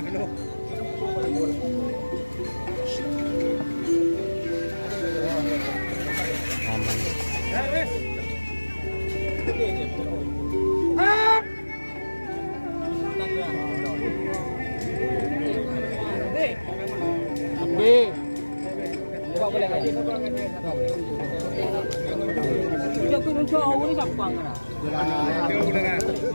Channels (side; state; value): both; inverted; correlation -1.00